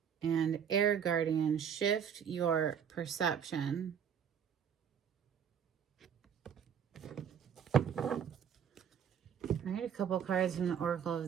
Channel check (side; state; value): left; quieter; 8.0 dB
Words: And Air Guardian, shift your perception. All right, a couple cards from the Oracle